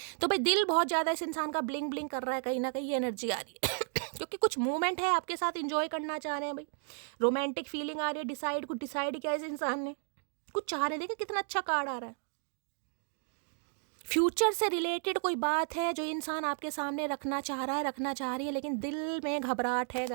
तो भाई दिल बहुत ज़्यादा इस इंसान का ब्लिंग ब्लिंग कर रहा है कहीं ना कहीं, ये एनर्जी आ रही है क्योंकि कुछ मूवमेंट है आपके साथ, इंजॉय करना चाह रहे हैं भाई। रोमांटिक फीलिंग आ रही है। डिसाइड, कुछ डिसाइड किया इस इंसान ने, कुछ चाह रहे हैं। देखिए कितना अच्छा कार्ड आ रहा है। फ्यूचर से रिलेटेड कोई बात है जो इंसान आपके सामने रखना चाह रहा है, रखना चाह रही है, लेकिन दिल में घबराहट है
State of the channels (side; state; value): left; silent; 56 dB below the other